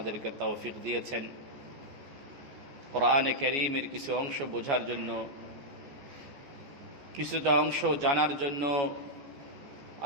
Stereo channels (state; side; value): late; left; 14 ms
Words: তৌফিক দিয়েছেন কোরআনে কারীমের কিছু অংশ বোঝার জন্য কিছুটা অংশ জানার জন্য